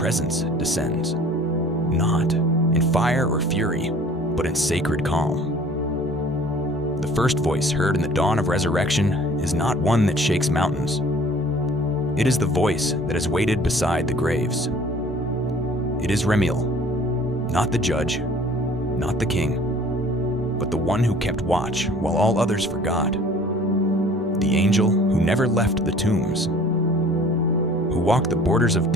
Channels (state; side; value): normal; both; correlation 0.50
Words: descends, not in fire or fury, but in sacred calm. The first voice heard in the dawn of resurrection is not one that shakes mountains. It is the voice that has waited beside the graves. It is REMIEL, not the judge, not the king, but the one who kept watch while all others forgot. The angel who never left the tombs, who walked the borders of